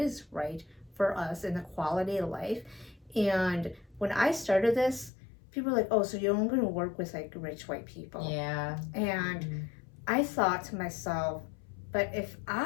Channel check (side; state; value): right; drops out; at 5.1 s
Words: right for us in the quality of life. And when I started this, people were like, oh, so you're only going to work with like rich white people. Yeah. And I thought to myself, but if